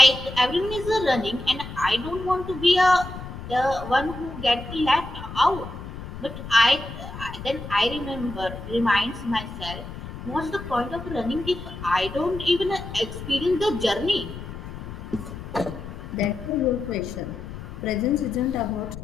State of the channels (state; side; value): noise; left; rumble, 11 dB below the sound